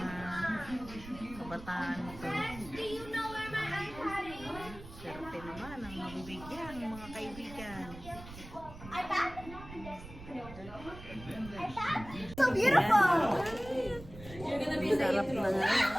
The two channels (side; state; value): right; noise; rumble, 15 dB below the sound